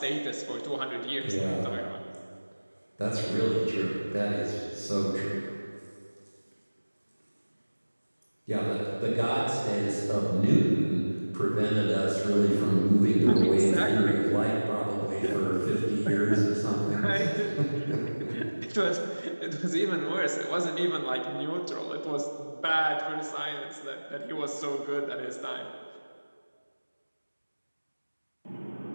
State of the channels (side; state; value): both; inverted; correlation -1.00